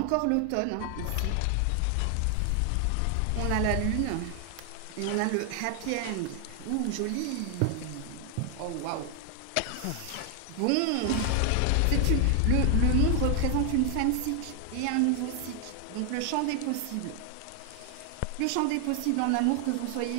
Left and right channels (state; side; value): different; both; correlation 0.00